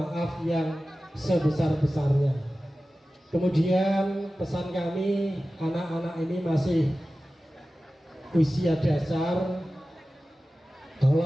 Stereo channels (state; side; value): normal; both; correlation 0.95